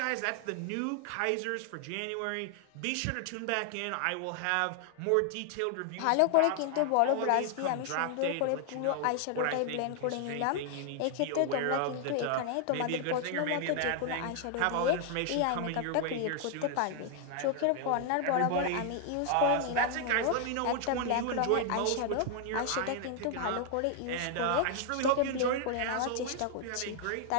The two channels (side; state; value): both; different; correlation 0.00